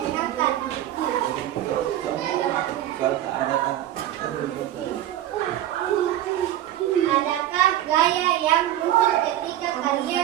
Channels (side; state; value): left; quieter; 12.9 dB